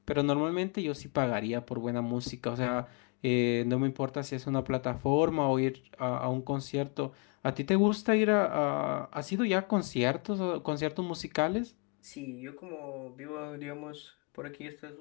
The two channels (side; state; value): right; quieter; 35.1 dB